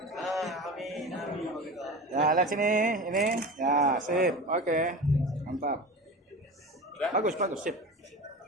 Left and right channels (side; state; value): both; normal; correlation 0.31